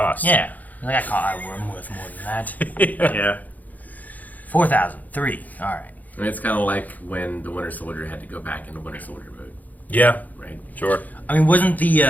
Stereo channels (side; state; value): right; late; 0.080 ms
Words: Yeah. Like, I'm worth more than that. Yeah. 4,000. 3. All right. I mean, it's kind of like when the Winter Soldier had to go back into Winter Soldier mode, Yeah, right? sure. I mean, wasn't